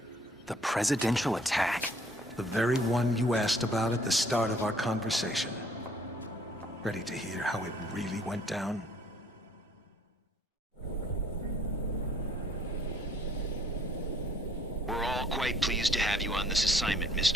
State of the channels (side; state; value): both; normal; correlation 0.61